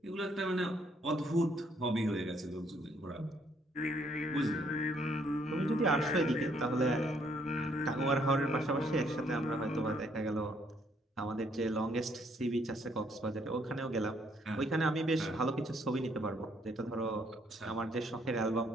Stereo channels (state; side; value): normal; both; correlation 0.68